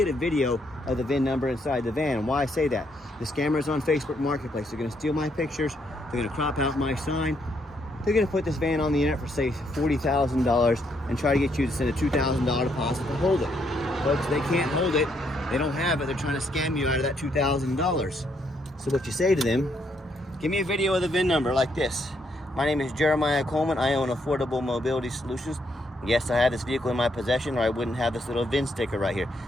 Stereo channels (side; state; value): both; normal; correlation 0.74